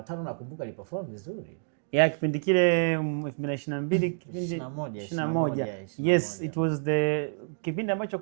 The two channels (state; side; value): silent; left; digital silence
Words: 5 nakumbuka iliperform vizuri. Kipindi kile 2022 21. Yes, it was the kipindi ambacho